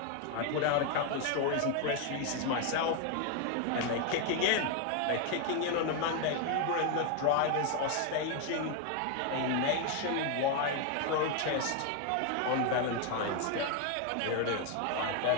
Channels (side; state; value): both; different; correlation 0.01